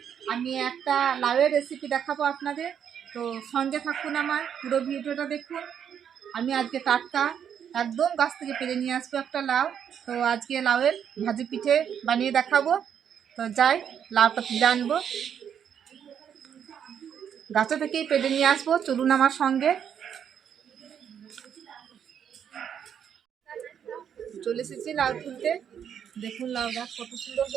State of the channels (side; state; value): left; quieter; 8.4 dB